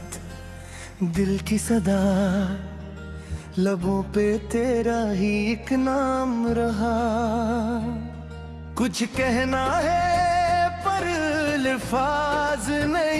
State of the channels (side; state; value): both; identical; correlation 1.00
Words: दिल की सदा, लबों पे तेरा ही एक नाम रहा। कुछ कहना है पर अल्फाज